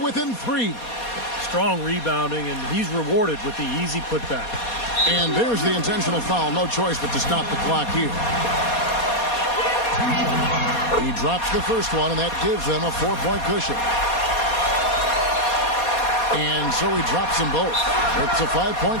within 3. Strong rebounding, and he's rewarded with the easy putback. And there's the intentional foul. No choice but to stop the clock here. He drops the first one, and that gives them a 4-point cushion. And so he drops them both. It's a 5-point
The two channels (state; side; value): late; right; 4.2 ms